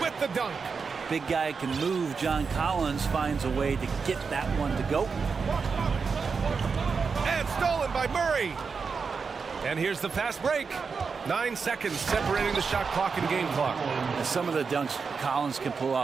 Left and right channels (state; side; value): quieter; left; 5.3 dB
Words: with the dunk. Big guy can move. John Collins finds a way to get that one to go. And stolen by Murray. And here's the fast break. 9 seconds separating the shot clock and game clock. And some of the dunks Collins can pull